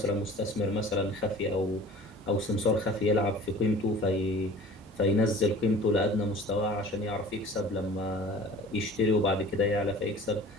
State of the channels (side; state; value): both; normal; correlation 0.44